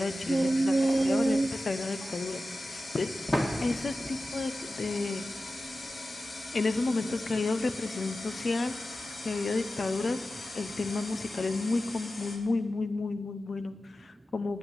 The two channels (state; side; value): normal; both; correlation 0.94